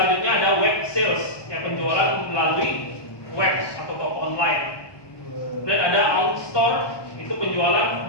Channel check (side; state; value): right; late; 1.2 ms